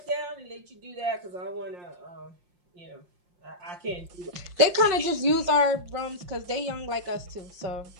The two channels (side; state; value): left; late; 5.6 ms